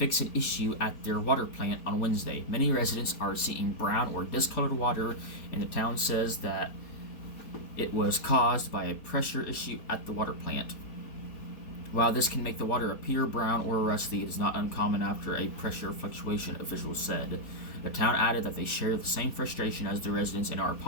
an issue at their water plant on Wednesday. Many residents are seeing brown or discolored water, and the town says that it was caused by a pressure issue at the water plant. While this can make the water appear brown or rusty, it is not uncommon after a pressure fluctuation, officials said. The town added that they share the same frustration as the residents and are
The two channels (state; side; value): late; right; 4.2 ms